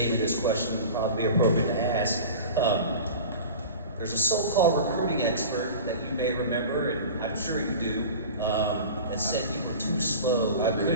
me this question, would probably be appropriate to ask. There's a so-called recruiting expert that you may remember, and I'm sure you do, that said you were too slow. I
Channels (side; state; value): both; inverted; correlation -0.35